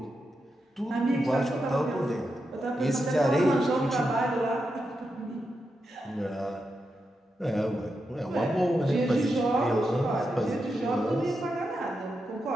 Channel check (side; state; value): both; normal; correlation 0.87